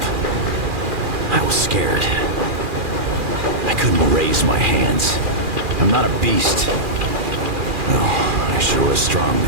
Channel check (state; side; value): late; left; 2.4 ms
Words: I was scared. I couldn't raise my hands. I'm not a beast. Oh, I sure was strong